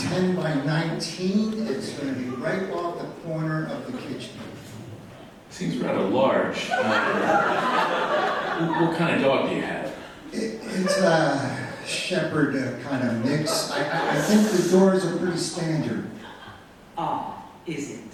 by 19. It's going to be right off the corner of the kitchen. Seems rather large. What kind of dog do you have? It's a shepherd kind of mix. I think the doors are pretty standard. Ah, is it?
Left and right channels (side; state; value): both; identical; correlation 1.00